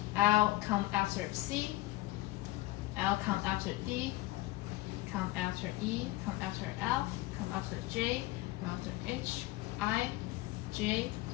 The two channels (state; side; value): quieter; right; 18.6 dB